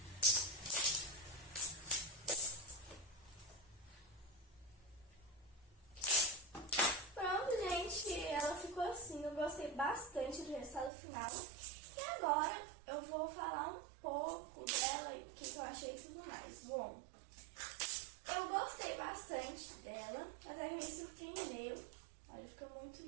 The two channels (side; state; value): left; drops out; at 10.9 s